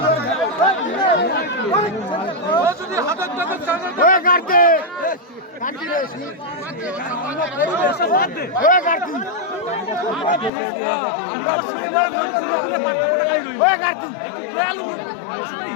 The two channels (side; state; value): right; drops out; at 10.5 s